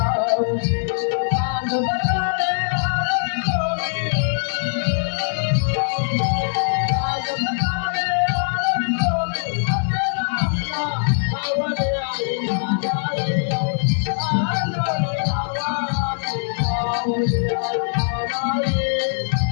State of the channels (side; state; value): right; silent; digital silence